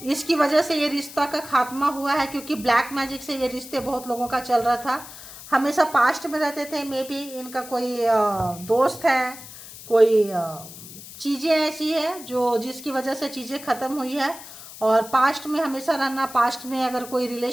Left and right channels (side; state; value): left; noise; hiss, 15 dB below the sound